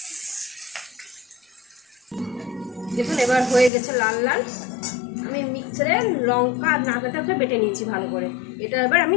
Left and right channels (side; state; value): right; drops out; at 3.7 s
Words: দেখুন এবার হয়ে গেছে লাল লাল। আমি মিক্সারে লঙ্কা আর নারকেলটা বেটে নিয়েছি ভালো করে, এটা এবার আমি